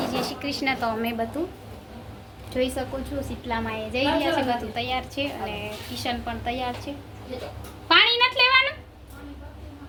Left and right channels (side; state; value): both; identical; correlation 1.00